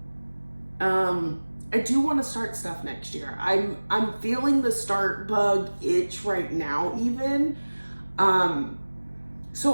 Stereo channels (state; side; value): inverted; both; correlation -1.00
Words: I do want to start stuff next year. I'm feeling the start bug itch right now even.